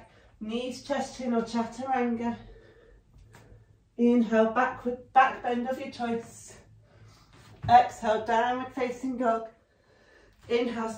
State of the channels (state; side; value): identical; both; correlation 1.00